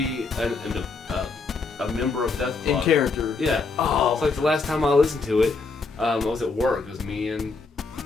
a member of Death in Clock. character. Yeah. Oh. It's like the last time I listened to it, I was at work. It was me and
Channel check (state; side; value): quieter; right; 4.2 dB